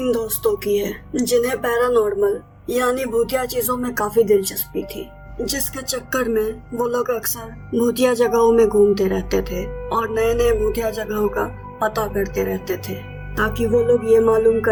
दोस्तों की है जिन्हें पैरानॉर्मल यानी भूतिया चीजों में काफी दिलचस्पी थी, जिसके चक्कर में वो लोग अक्सर भूतिया जगहों में घूमते रहते थे और नए नए भूतिया जगहों का पता करते रहते थे ताकि वो लोग ये मालूम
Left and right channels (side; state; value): both; identical; correlation 1.00